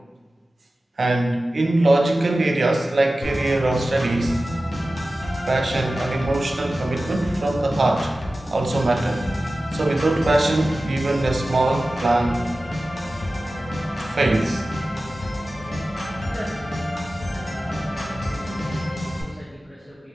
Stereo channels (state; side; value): normal; both; correlation 0.95